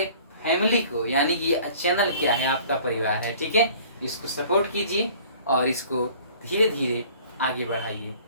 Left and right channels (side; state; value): both; inverted; correlation -0.50